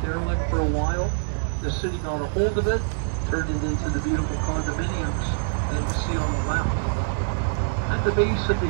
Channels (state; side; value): silent; left; digital silence